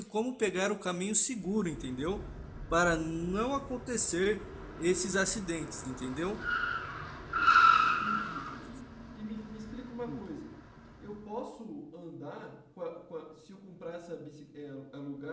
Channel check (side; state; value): both; identical; correlation 1.00